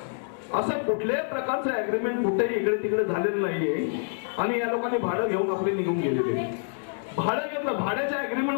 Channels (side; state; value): right; silent; digital silence